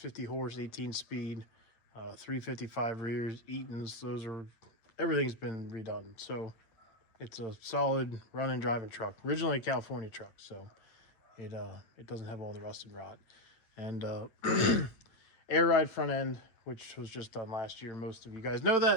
horse, 18 speed, 355 rears, Eaton's. Everything's been redone. So it's a solid running driving truck. Originally a California truck, so it doesn't have all the rust and rot. And air ride front end, which was just done last year. Most of you guys know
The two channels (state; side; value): late; right; 8.5 ms